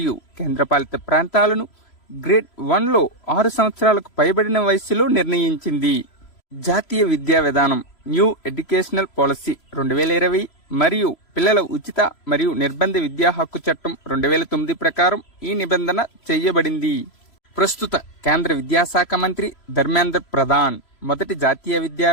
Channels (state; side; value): late; right; 3.0 ms